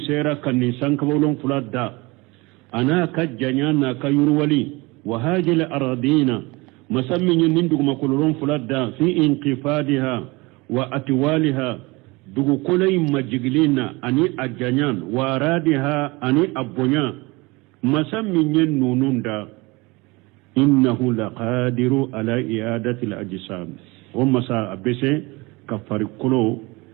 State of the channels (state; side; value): quieter; left; 24.2 dB